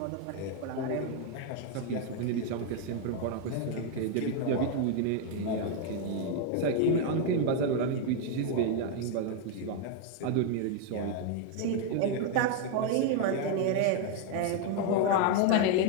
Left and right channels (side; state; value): both; different; correlation 0.01